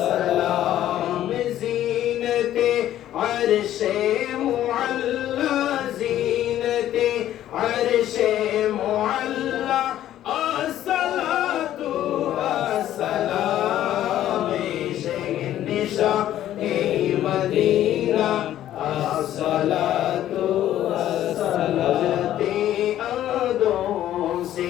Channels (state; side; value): quieter; right; 12.4 dB